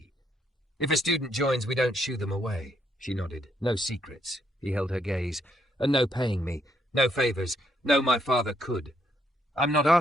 If a student joins, we don't shoo them away. She nodded. No secrets. He held her gaze. And no paying me. No favours. No, my father could. I'm not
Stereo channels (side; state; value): both; normal; correlation 0.73